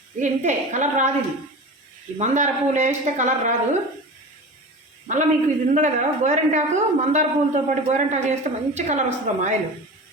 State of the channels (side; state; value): both; normal; correlation 0.32